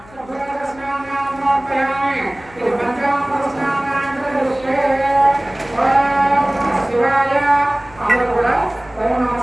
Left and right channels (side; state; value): left; noise; hum, 23 dB below the sound